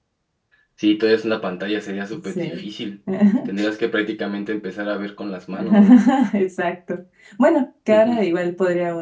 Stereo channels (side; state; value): both; identical; correlation 1.00